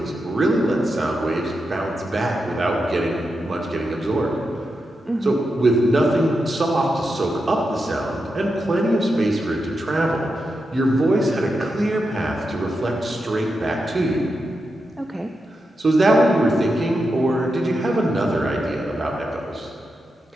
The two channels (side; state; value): both; normal; correlation 0.87